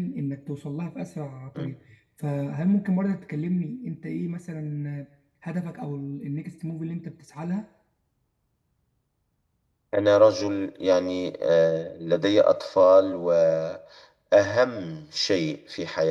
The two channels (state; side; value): identical; both; correlation 1.00